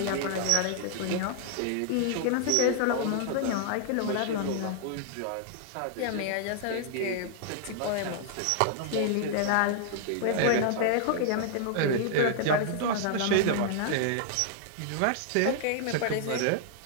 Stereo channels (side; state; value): both; different; correlation -0.01